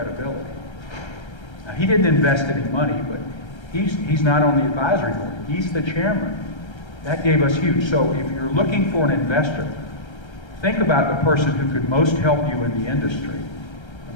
Now, he didn't invest any money, but he's not on the advisory board. He's the chairman. That gave us huge. So if you're looking for an investor, think about the person who could most help you in the industry and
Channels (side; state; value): right; late; 1.3 ms